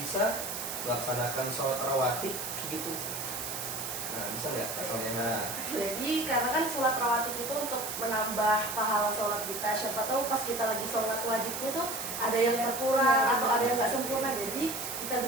bisa melaksanakan sholat rawatib gitu. Nah, bisa nggak soalnya? Jadi karena kan sholat rawatib itu untuk menambah pahala sholat kita. Siapa tahu pas kita lagi sholat wajibnya tuh ada yang berkurang atau ada yang nggak sempurna. Jadi kita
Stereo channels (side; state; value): right; noise; hiss, 5 dB below the sound